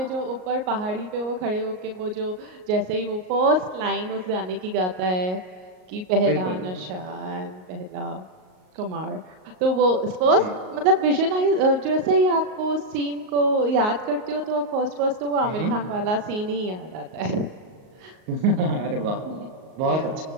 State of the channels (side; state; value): left; late; 38 ms